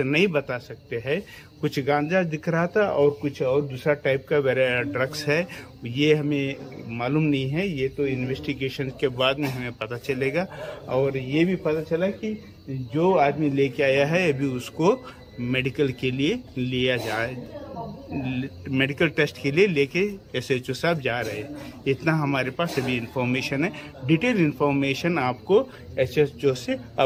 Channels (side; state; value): both; identical; correlation 1.00